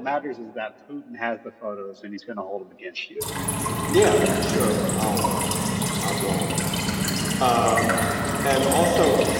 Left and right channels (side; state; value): both; identical; correlation 1.00